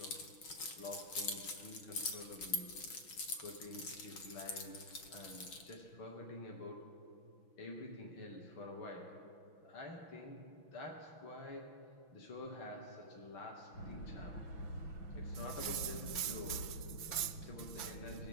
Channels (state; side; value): late; right; 6.1 ms